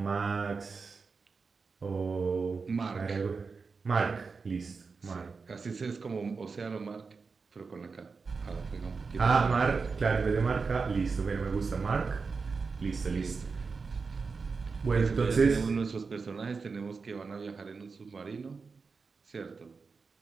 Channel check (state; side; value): quieter; left; 4.7 dB